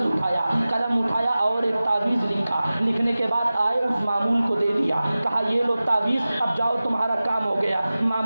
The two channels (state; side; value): inverted; both; correlation -0.96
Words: اٹھایا، قلم اٹھایا اور ایک تعویذ لکھا، لکھنے کے بعد آئے اس معمول کو دے دیا، کہا یہ لو تعویذ، اب جاؤ تمہارا کام ہو گیا۔